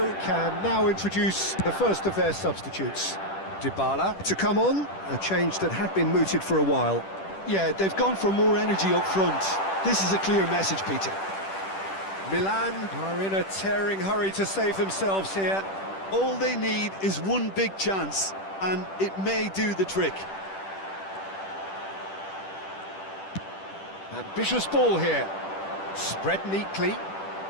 can now introduce the first of their substitutes. Dybala to come on, a change that had been mooted for a while. Yeah, they've gone for more energy up front. This is a clear message, Peter. Milan are in a tearing hurry to save themselves here. All they need is one big chance, and it may do the trick. Ambitious ball here. Spread neatly.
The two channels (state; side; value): late; right; 10 ms